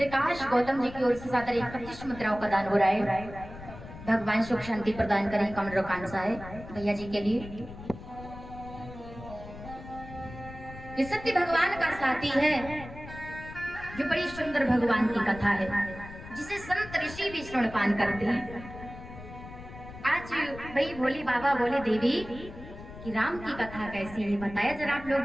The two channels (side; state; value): left; noise; rumble, 14 dB below the sound